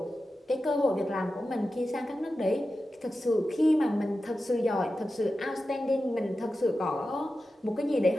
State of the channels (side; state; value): both; normal; correlation 0.92